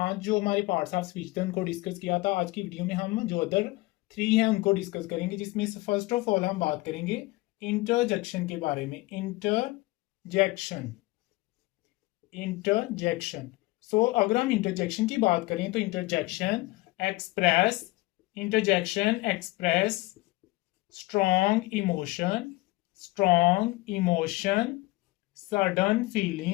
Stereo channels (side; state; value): right; quieter; 21.0 dB